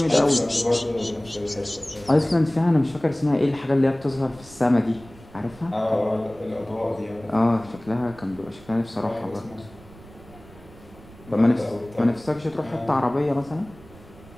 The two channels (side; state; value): right; noise; rumble, 21 dB below the sound